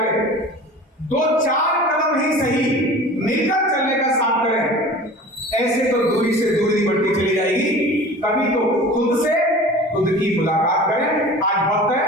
2-4 कदम ही सही मिलकर चलने का साथ करें। ऐसे तो दूरी से दूरी बढ़ती चली जाएगी। कभी तो खुद की मुलाकात करें। आज वक्त है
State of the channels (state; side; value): normal; both; correlation 0.40